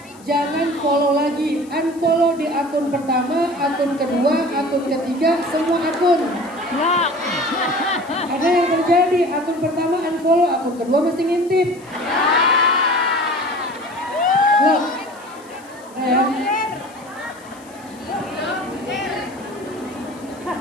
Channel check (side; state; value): left; noise; hiss, 25 dB below the sound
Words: Jangan follow lagi, unfollow di akun pertama, akun kedua, akun ketiga, semua akun. Ada yang terjadi, akun pertama unfollow, akun kedua mesti ngintip. Loh,